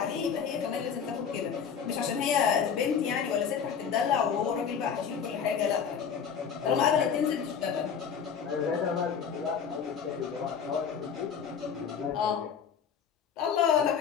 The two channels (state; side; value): quieter; right; 7.2 dB